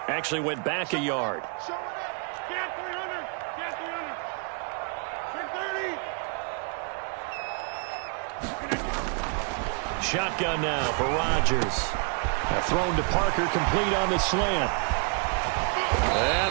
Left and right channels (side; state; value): left; quieter; 37.0 dB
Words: actually went back a yard. Show it up. Get 300. Get 300. Shotgun now for Rodgers. Thrown to Parker, complete on the slant.